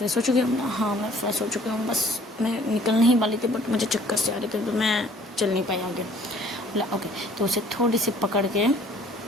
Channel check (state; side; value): normal; both; correlation 0.55